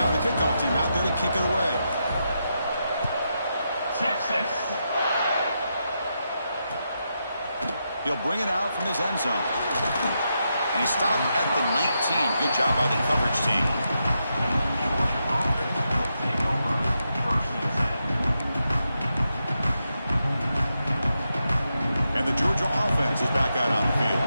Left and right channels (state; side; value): inverted; both; correlation -0.85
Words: the kickoff team out there to kick it away. Texas. He'll bring it out from his end zone. And he stopped at the 19. Good job by the coverage team. And the Georgia offense is back out on the field.